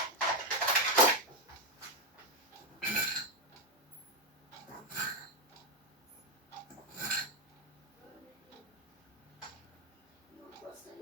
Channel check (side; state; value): both; normal; correlation 0.06